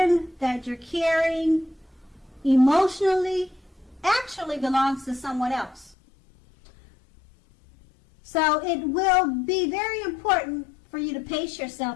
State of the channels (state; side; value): drops out; right; at 6.0 s